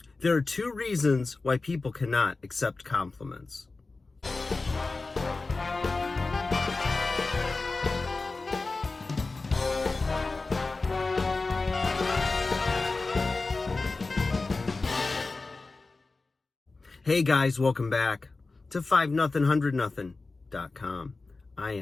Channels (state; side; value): quieter; right; 3.7 dB